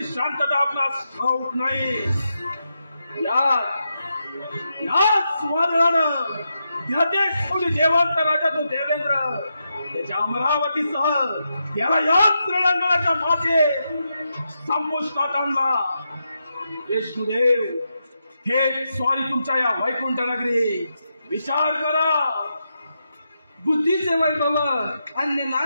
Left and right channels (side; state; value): both; inverted; correlation -0.85